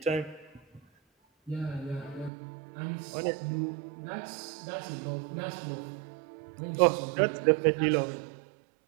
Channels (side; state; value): left; drops out; at 2.3 s